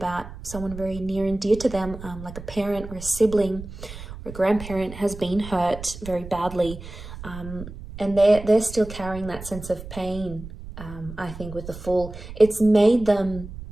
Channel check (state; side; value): noise; right; rumble, 12 dB below the sound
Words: someone very near and dear to them, like a parent or a sibling or a grandparent has been hurt very badly. And they're still carrying that sense of pain, I think, with the Fool. It's made them